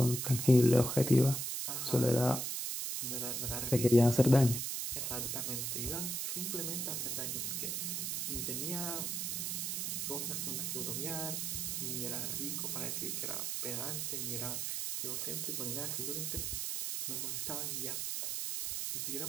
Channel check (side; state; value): right; noise; hiss, 1 dB below the sound